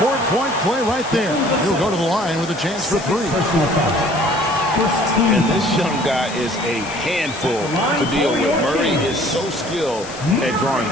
play right there. He'll go to the line with a chance for 3. And this young guy is a handful to deal with. Murray is so skilled at drawing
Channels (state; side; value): noise; left; hiss, 15 dB below the sound